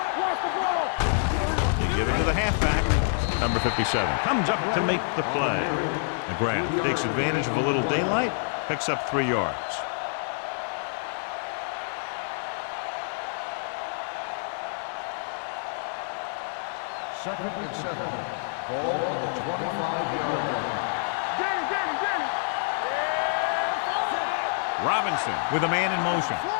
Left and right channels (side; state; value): right; silent; digital silence